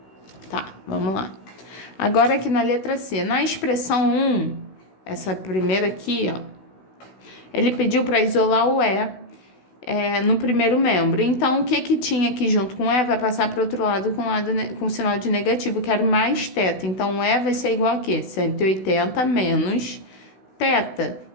Tá, vamos lá. Agora aqui na letra C, na expressão 1, essa primeira aqui, ó, ele pediu para isolar o E no primeiro membro. Então, o que tinha aqui junto com o E vai passar para o outro lado com sinal de negativo, que era mais θ. Então, o E vai ser igual a quê? 180 menos θ.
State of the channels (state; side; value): late; right; 16 ms